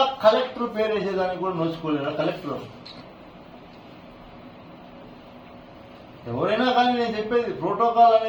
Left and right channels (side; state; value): both; identical; correlation 1.00